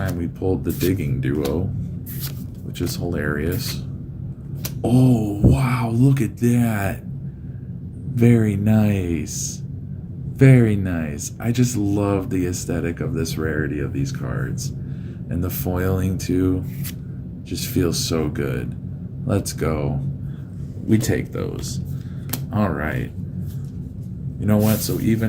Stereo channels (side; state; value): both; identical; correlation 1.00